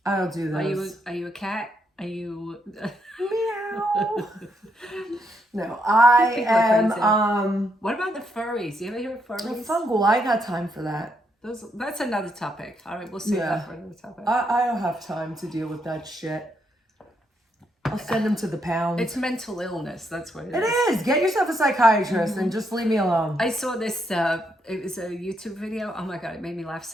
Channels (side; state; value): both; normal; correlation 0.77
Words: I don't do those. Are you a cat? Are you Meow. No, I People are am crazy. What about the furries? You ever hear of furries? fungal. I got time for that. That's another topic. All right, we'll save Yeah. that for another topic. I don't have time to deal with that shit. I'll send them to the pound. It's mental illness. That's what it It is. is. Get yourself a psychiatrist and just leave me alone. I saw this, it was a YouTube video. Oh my God, it made me laugh